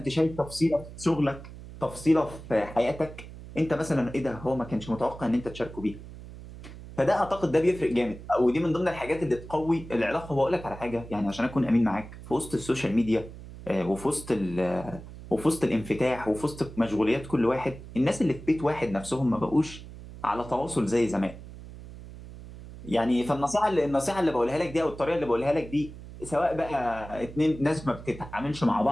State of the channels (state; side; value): noise; right; hum, 14 dB below the sound